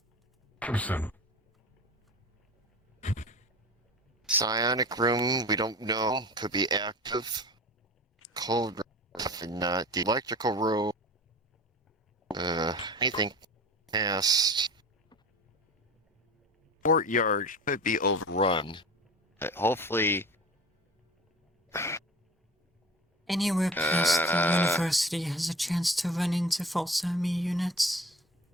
Understand. Psionic room, we don't know. Could be active. Cold room, definitely not. The electrical room, anything past courtyard could be overrun. Hopefully, Anywhere past the university has a chance to run into false enemy units.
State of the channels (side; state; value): both; normal; correlation 0.36